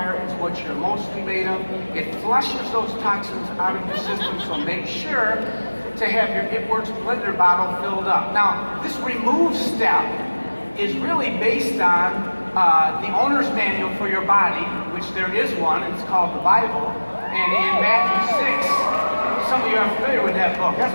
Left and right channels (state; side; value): inverted; both; correlation -1.00